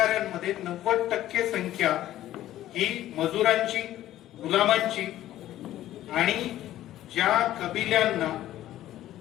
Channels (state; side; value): quieter; right; 13.5 dB